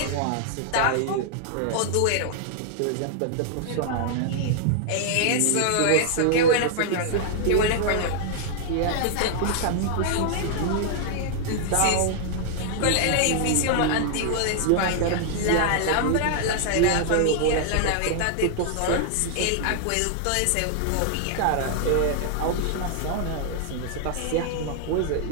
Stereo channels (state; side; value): different; both; correlation -0.01